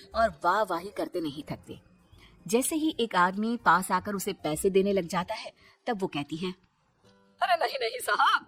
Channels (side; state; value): both; identical; correlation 1.00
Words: और वाह वाही करते नहीं थकते। जैसे ही एक आदमी पास आकर उसे पैसे देने लग जाता है, तब वो कहती है, अरे नहीं नहीं साहब,